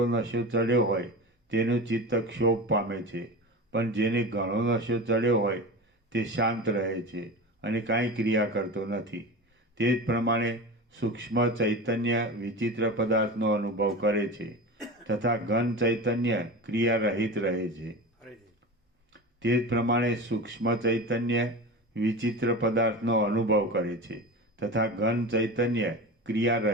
નશો ચડ્યો હોય તેનું ચિત્ત ક્ષોભ પામે છે, પણ જેને ઘણો નશો ચડ્યો હોય તે શાંત રહે છે અને કાંઈ ક્રિયા કરતો નથી. તે જ પ્રમાણે સૂક્ષ્મ ચૈતન્ય વિચિત્ર પદાર્થનો અનુભવ કરે છે, તથા ઘન ચૈતન્ય ક્રિયા રહિત રહે છે. તે જ પ્રમાણે સૂક્ષ્મ ચૈતન્ય વિચિત્ર પદાર્થનો અનુભવ કરે છે, તથા ઘન ચૈતન્ય ક્રિયા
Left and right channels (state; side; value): normal; both; correlation 0.28